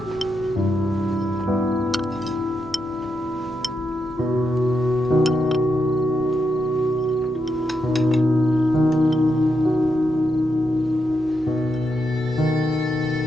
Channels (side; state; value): both; normal; correlation 0.83